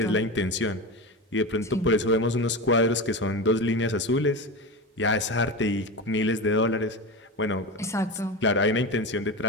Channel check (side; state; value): both; normal; correlation 0.22